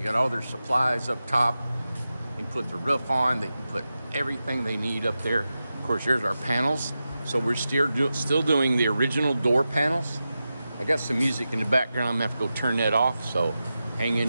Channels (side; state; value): both; inverted; correlation -0.92